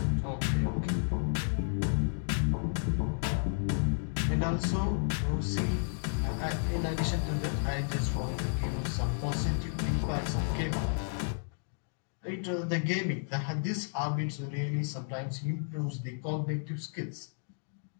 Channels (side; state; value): right; silent; digital silence